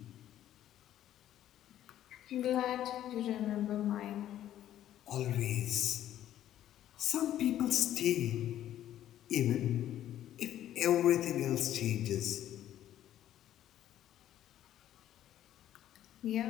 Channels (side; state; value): right; quieter; 12.0 dB